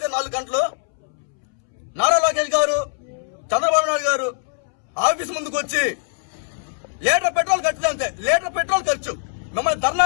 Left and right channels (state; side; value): silent; right; 64 dB below the other